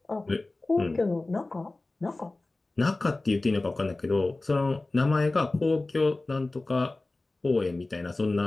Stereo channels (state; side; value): quieter; right; 3.0 dB